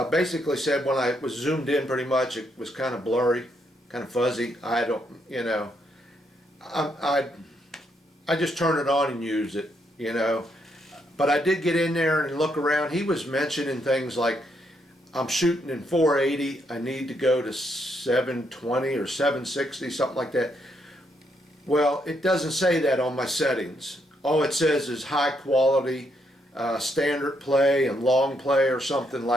basically said when I was zoomed in pretty much it was kind of blurry, kind of fuzzy. I don't, I just turn it on and use it, But I did get in there and look around. He was mentioning things like I'm shooting in 480. I need to go to 720 or 760, something like that. Well, it doesn't say that on my settings. All it says is high quality, standard play and long play or something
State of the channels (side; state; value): both; normal; correlation 0.76